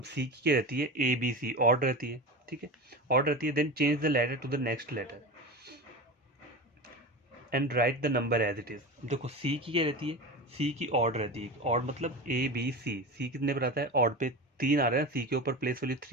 सी की क्या रहती है, ए बी सी ऑड रहती है, ठीक है, ऑड रहती है, then change the letter to the next letter and write the number as it is. देखो सी की क्या रहती है, सी की ऑड रहती है, ऑड मतलब ए बी सी, सी कितने पर आता है, ऑड पे 3 आ रहा है, सी के ऊपर प्लेस वैल्यू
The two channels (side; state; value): both; normal; correlation 0.27